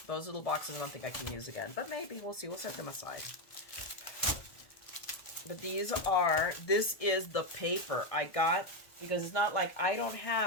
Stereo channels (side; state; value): right; late; 1.7 ms